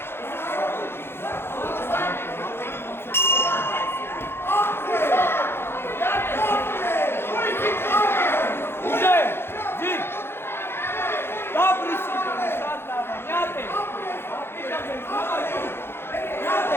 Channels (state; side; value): late; right; 0.11 ms